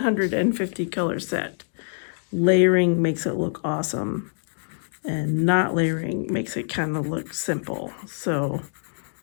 color set, layering makes it look awesome, and not layering makes it kind of look simple. So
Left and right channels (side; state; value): right; silent; digital silence